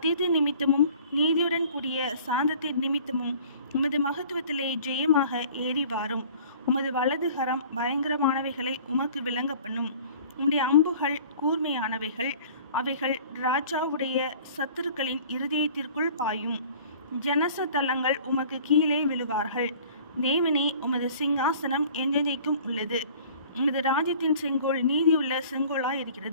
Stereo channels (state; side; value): inverted; both; correlation -0.48